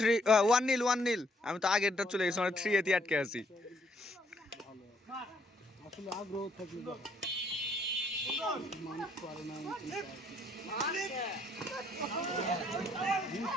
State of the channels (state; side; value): normal; both; correlation 0.69